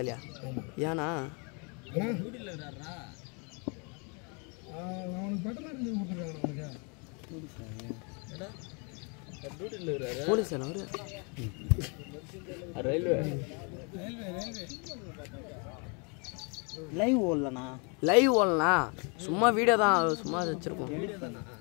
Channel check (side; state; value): right; quieter; 34.7 dB